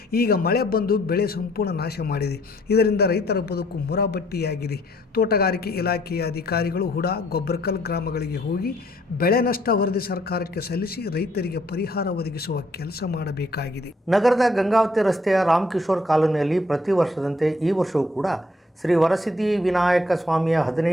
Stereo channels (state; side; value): normal; both; correlation 0.65